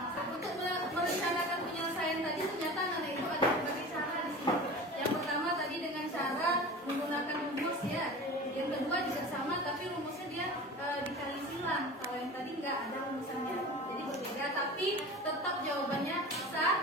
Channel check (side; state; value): both; normal; correlation 0.35